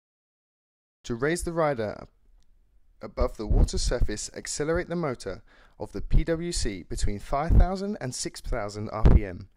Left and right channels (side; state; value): both; identical; correlation 1.00